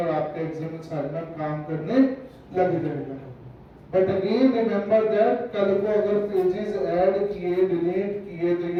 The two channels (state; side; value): identical; both; correlation 1.00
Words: और आपके XML साइट में काम करने लग जाएगा। बट अगेन रिमेंबर दैट कल को अगर पेजेस ऐड किए, डिलीट किए, तो